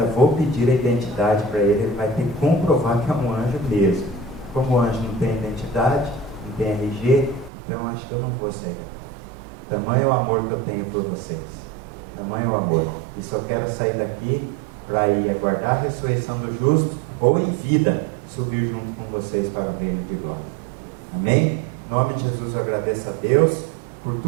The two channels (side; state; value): left; drops out; at 7.5 s